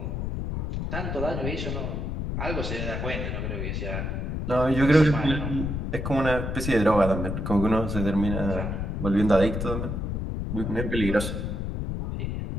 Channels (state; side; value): noise; left; rumble, 3 dB below the sound